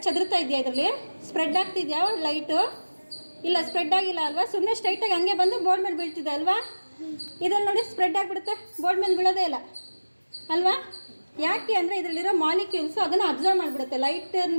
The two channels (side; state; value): both; inverted; correlation -1.00